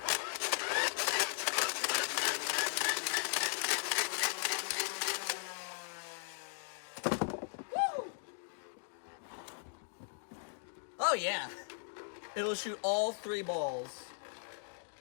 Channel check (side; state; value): right; silent; digital silence